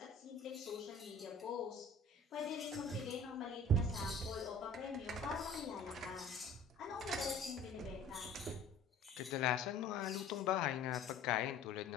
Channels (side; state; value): right; quieter; 3.2 dB